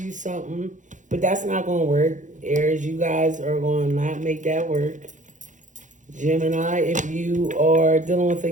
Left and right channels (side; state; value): left; late; 0.36 ms